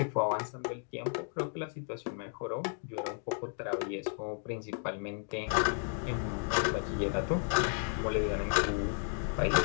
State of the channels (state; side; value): silent; right; 55 dB below the other